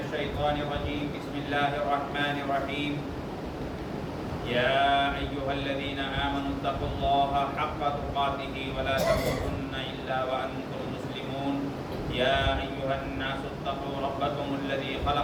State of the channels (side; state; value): both; identical; correlation 1.00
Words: الشيطان الرجيم. بسم الله الرحمن الرحيم. يا أيها الذين آمنوا اتقوا الله حق تقاته ولا تموتن إلا وأنتم مسلمون. يا أيها الناس اتقوا ربكم الذي